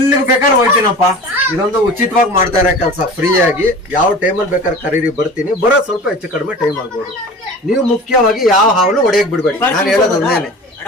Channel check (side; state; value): both; normal; correlation 0.38